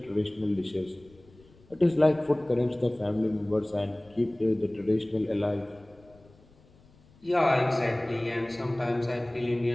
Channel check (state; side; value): noise; left; rumble, 28 dB below the sound